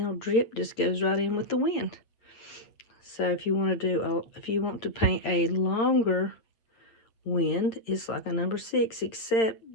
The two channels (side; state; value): right; late; 8.9 ms